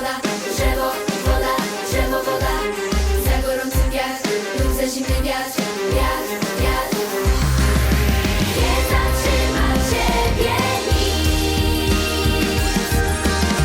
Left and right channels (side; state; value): both; identical; correlation 1.00